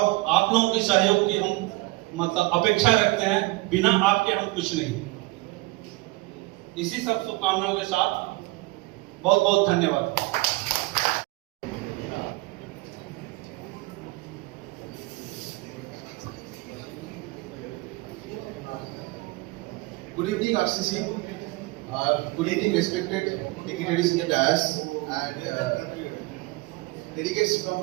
आप लोगों के सहयोग की हम मतलब अपेक्षा रखते हैं। बिना आपके हम कुछ नहीं। इसी सब शुभकामनाओं के साथ बहुत बहुत धन्यवाद। Good evening, RCC. Good evening, respected dignitaries in the dais and delegates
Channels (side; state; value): left; quieter; 22.7 dB